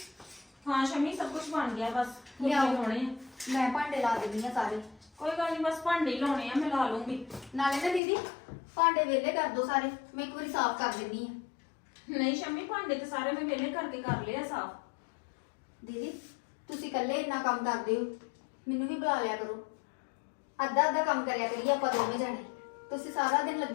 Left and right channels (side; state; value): right; drops out; at 8.0 s